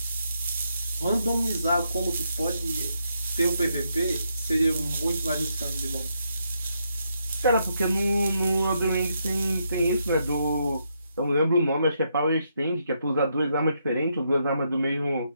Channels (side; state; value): both; inverted; correlation -0.79